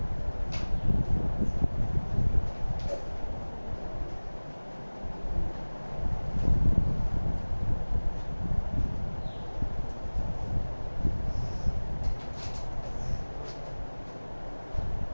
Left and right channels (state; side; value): inverted; both; correlation -1.00